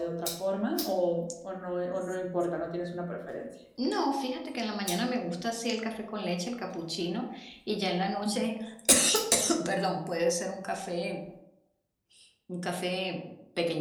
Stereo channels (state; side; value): identical; both; correlation 1.00